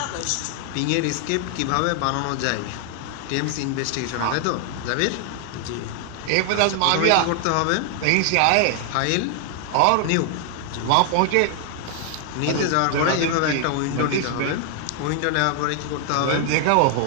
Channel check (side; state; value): both; different; correlation 0.00